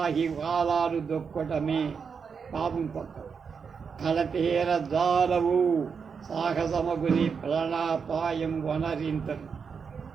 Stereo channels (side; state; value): left; quieter; 6.0 dB